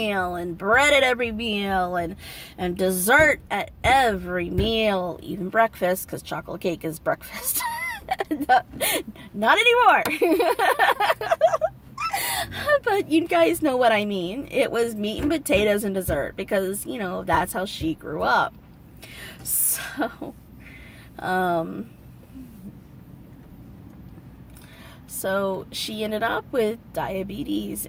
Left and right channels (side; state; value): both; identical; correlation 1.00